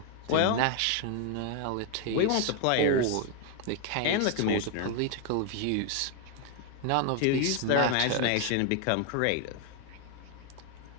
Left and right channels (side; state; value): both; different; correlation 0.01